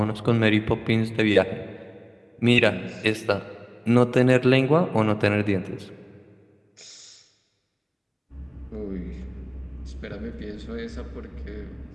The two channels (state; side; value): identical; both; correlation 1.00